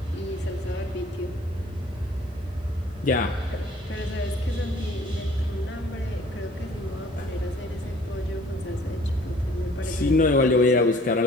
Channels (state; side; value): normal; both; correlation 0.55